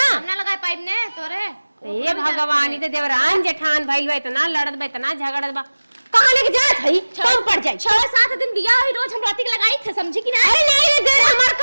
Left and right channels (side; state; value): both; inverted; correlation -1.00